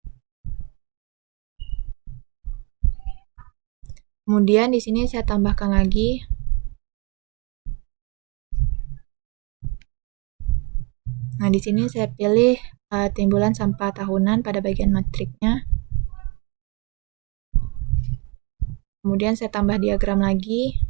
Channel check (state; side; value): quieter; left; 29.8 dB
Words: Kemudian di sini saya tambahkan lagi Nah, di sini saya pilih timbulan sampah tahunan pada bagian matriknya. Kemudian saya tambah diagram lagi.